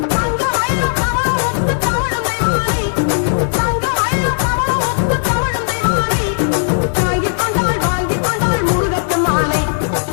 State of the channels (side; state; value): right; silent; digital silence